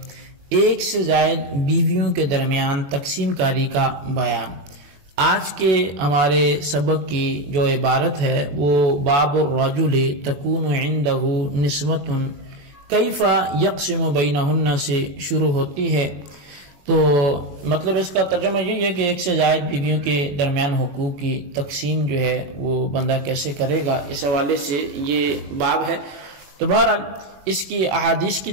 ایک سے زائد بیویوں کے درمیان تقسیم کاری کا بیان۔ آج کے ہمارے سبق کی جو عبارت ہے وہ باب الرجل تکون عنده نسوۃ کیف یقسم بینہن سے شروع ہوتی ہے۔ تو مطلب اس کا ترجمہ یہی ہے کہ ایک سے زائد بیویوں کے درمیان حقوق کی تقسیم جو ہے وہ بندہ کیسے کرے گا، اس حوالے سے یہ باب ہے۔ تو بہرحال اس کی احادیث کی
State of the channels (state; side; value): late; left; 21 ms